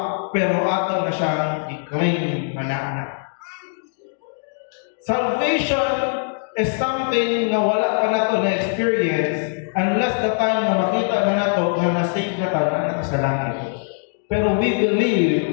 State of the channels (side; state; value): right; silent; digital silence